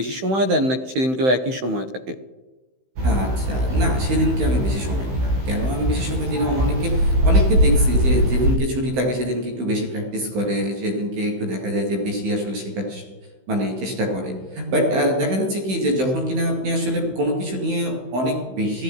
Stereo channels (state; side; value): late; left; 15 ms